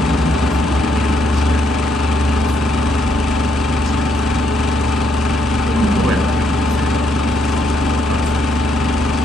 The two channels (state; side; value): normal; both; correlation 0.74